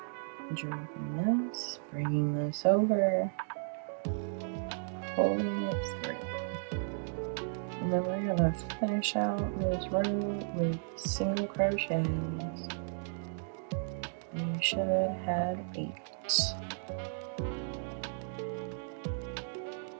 Dropping this, bringing this over, pulling it through. And then we're going to finish out this row with single crochets. You should have 8.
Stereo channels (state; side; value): silent; left; digital silence